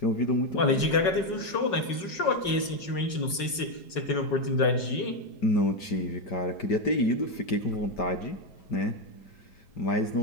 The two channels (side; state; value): right; late; 5.4 ms